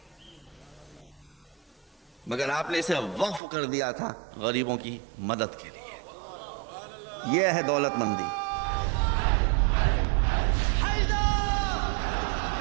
مگر آپ نے اسے وقف کر دیا تھا غریبوں کی مدد کے لیے۔ یہ ہے دولت مندی۔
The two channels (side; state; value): left; drops out; at 3.4 s